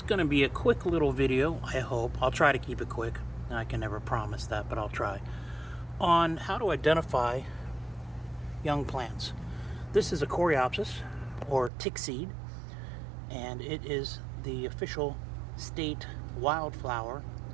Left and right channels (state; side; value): drops out; left; at 11.7 s